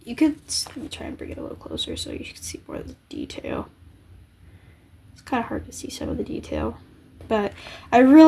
let me try and bring it a little closer so you can see more of the detail. It's kind of hard to see some of the detail, but I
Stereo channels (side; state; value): both; identical; correlation 1.00